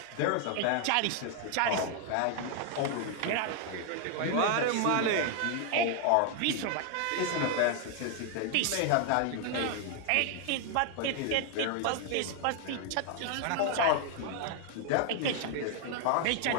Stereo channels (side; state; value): both; different; correlation 0.00